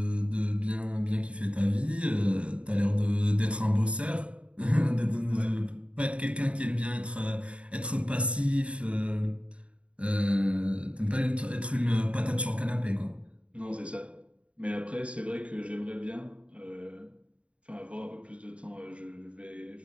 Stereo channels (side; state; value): left; late; 0.061 ms